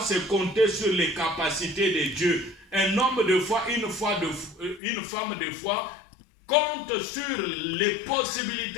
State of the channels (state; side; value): drops out; right; at 4.8 s